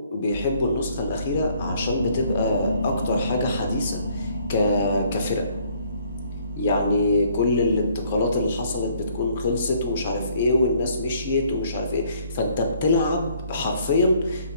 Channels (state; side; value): inverted; both; correlation -0.63